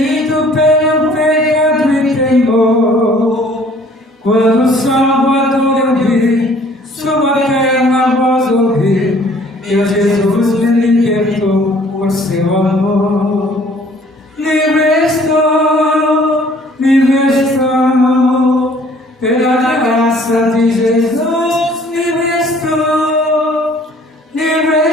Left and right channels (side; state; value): both; normal; correlation 0.56